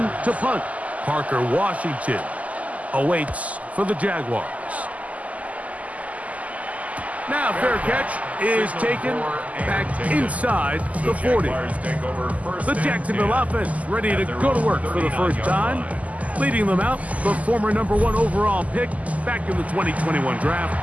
to punt. Parker Washington awaits for the Jaguars. Now fair catch is taken back inside the 40. The Jacksonville offense ready to go to work for the first time. Leading them out, the former #1 overall pick back in the 2021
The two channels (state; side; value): late; left; 0.073 ms